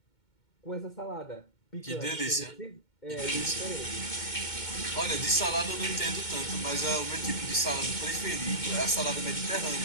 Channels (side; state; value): right; late; 2.2 ms